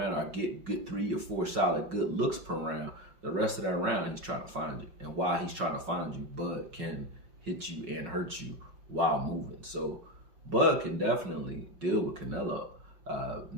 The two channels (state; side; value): late; left; 5.4 ms